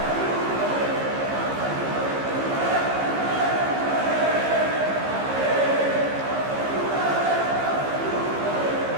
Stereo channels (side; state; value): left; late; 15 ms